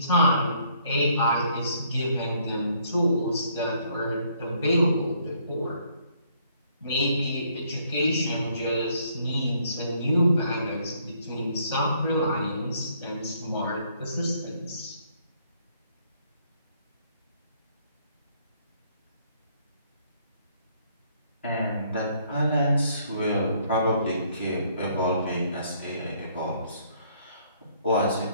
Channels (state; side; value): inverted; both; correlation -0.66